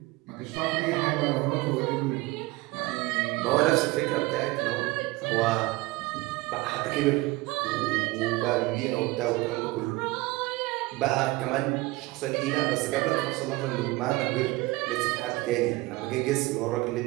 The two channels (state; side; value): quieter; left; 21.1 dB